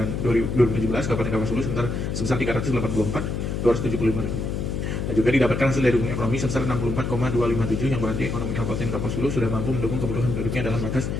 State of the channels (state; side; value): noise; left; hum, 2 dB below the sound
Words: 2017 Kabupaten Kapuas Hulu sebesar 384.475.000. Dan juga didapatkan hasil daya dukung ekonomi sebesar 64,257, yang berarti ekonomi Kabupaten Kapuas Hulu sudah mampu mendukung kebutuhan penduduknya dalam batas